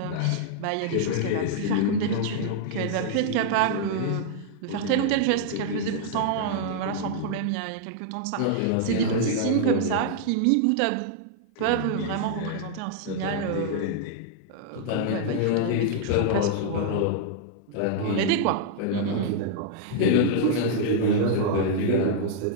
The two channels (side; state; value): both; different; correlation -0.01